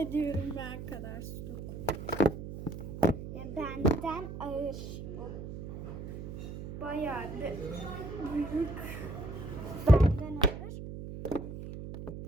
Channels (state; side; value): noise; right; hum, 9 dB below the sound